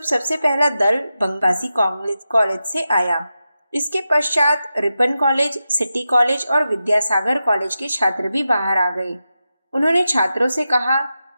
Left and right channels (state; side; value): inverted; both; correlation -0.91